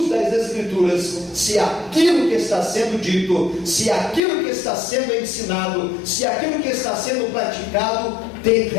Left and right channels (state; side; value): drops out; right; at 4.2 s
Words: das Escrituras se aquilo que está sendo dito, se aquilo que está sendo ensinado, se aquilo que está sendo praticado tem